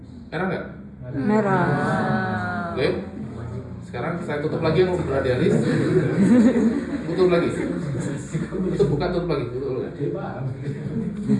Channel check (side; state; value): both; identical; correlation 1.00